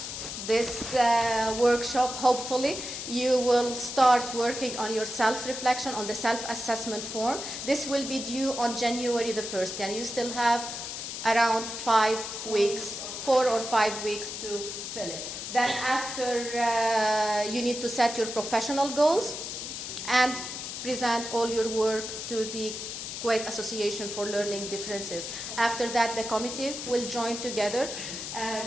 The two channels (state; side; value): noise; left; hiss, 7 dB below the sound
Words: this workshop, hopefully, you will start working on your self-reflection, on the self-assessment form. This will be due on January the 1st, and you still have around 5 weeks, 4 or 5 weeks to fill it. Then after, you need to set your professional goals and present all your work to the Kuwait Association for Learning Differences. After that, the committee will join together